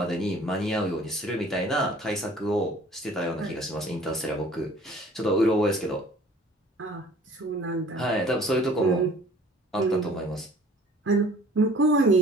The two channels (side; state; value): both; normal; correlation 0.50